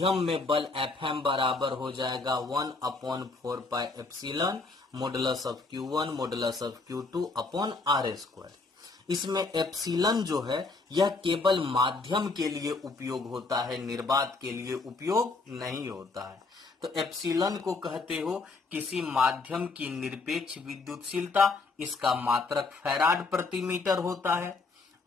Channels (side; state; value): right; quieter; 3.8 dB